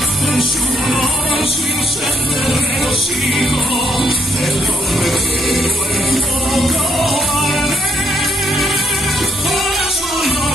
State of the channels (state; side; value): normal; both; correlation 0.72